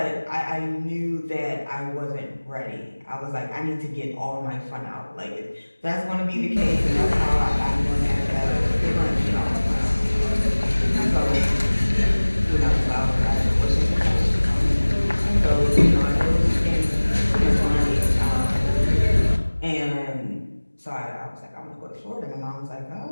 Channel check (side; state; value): both; inverted; correlation -1.00